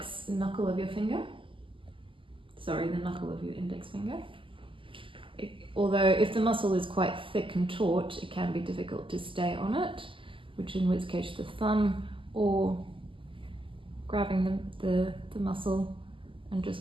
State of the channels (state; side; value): late; left; 0.25 ms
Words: knuckle of your finger. Sorry, the knuckle of your index finger. Although if the muscle is quite thick and taut, it can be difficult to stay on it, in which case the thumb or grabbing the muscle and just